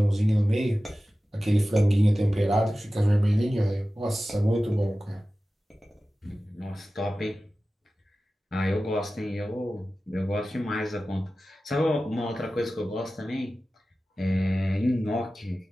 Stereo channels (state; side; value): normal; both; correlation 0.95